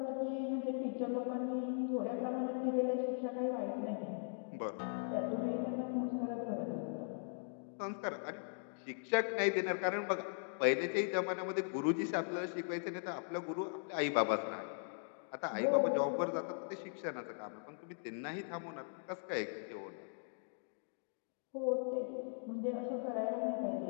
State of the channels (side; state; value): right; silent; digital silence